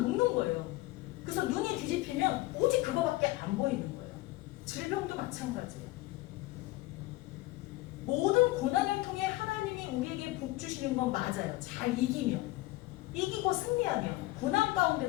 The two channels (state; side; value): quieter; right; 18.9 dB